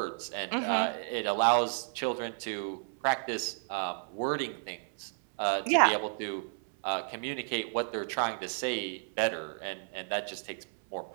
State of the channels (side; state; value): left; silent; 56 dB below the other